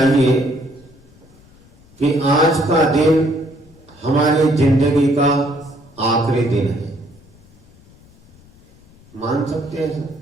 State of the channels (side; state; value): left; noise; rumble, 27 dB below the sound